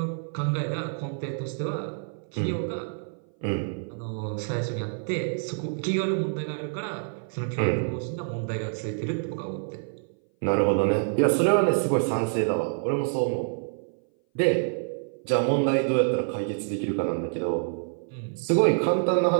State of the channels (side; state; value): left; silent; 58 dB below the other